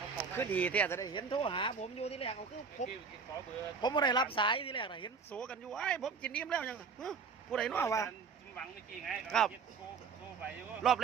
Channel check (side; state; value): left; quieter; 5.4 dB